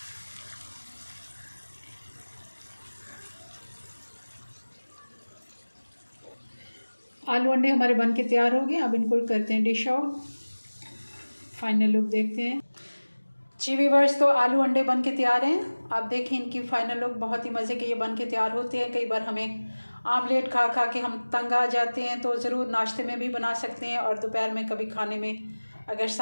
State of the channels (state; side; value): inverted; both; correlation -1.00